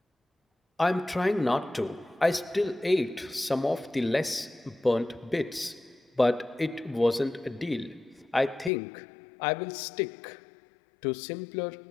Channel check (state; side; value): drops out; right; at 8.7 s